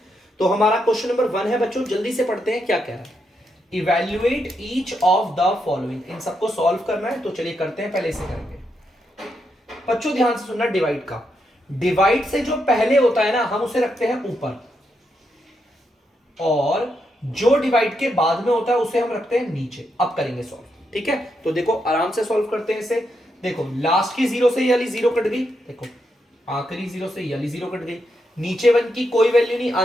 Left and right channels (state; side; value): normal; both; correlation 0.82